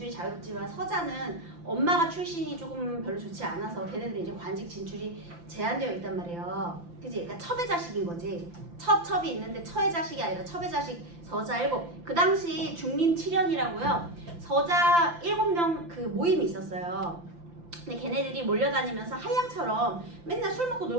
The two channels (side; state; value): left; late; 5.9 ms